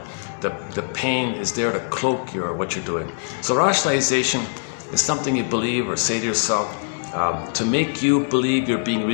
The pain is there to cloak what you're doing. So rationalization is something you believe or say to yourself to make you believe you're being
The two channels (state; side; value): silent; right; digital silence